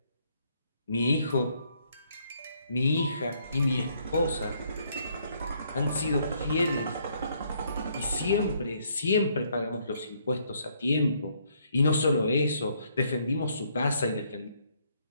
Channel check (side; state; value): both; inverted; correlation -0.69